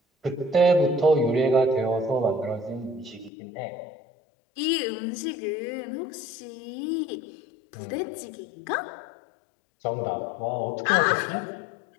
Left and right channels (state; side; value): drops out; right; at 3.3 s